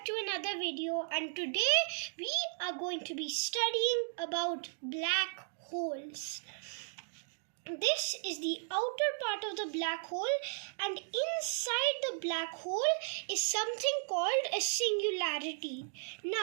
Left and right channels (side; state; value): left; silent; digital silence